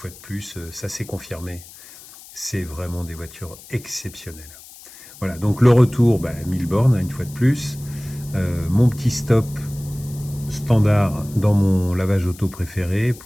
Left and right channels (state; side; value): noise; left; hiss, 19 dB below the sound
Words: de plus, ça s'est confirmé. C'est vraiment des voitures exceptionnelles. Voilà, donc le retour, 1000 bornes une fois de plus. Mon petit stop standard dans mon lavage auto préféré